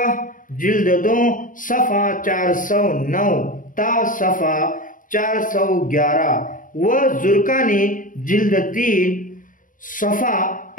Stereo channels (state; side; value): late; right; 0.39 ms